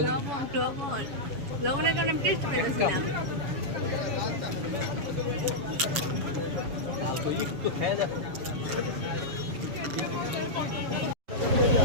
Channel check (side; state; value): left; late; 7.1 ms